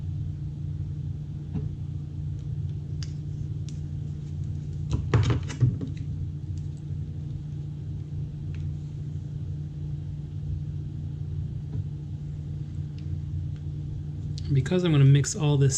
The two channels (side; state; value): both; identical; correlation 1.00